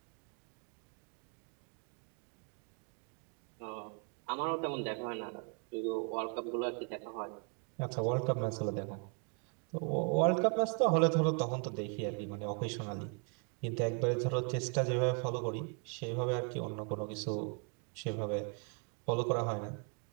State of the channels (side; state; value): left; quieter; 36.7 dB